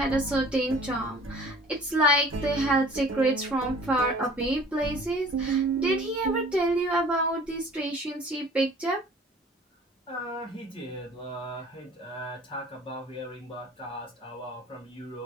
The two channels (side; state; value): both; normal; correlation 0.49